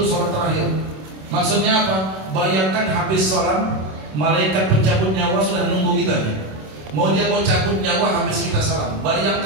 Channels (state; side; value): late; left; 27 ms